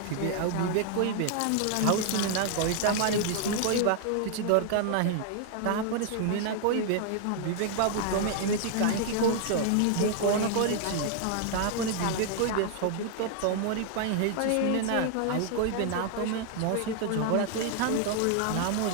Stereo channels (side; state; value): both; different; correlation 0.00